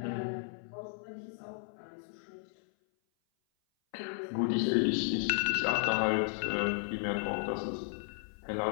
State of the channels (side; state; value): right; silent; 55 dB below the other